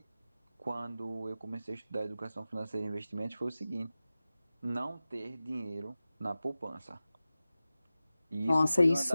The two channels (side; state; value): both; inverted; correlation -0.95